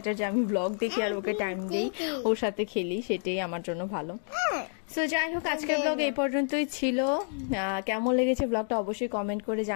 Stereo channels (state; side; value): silent; right; 56 dB below the other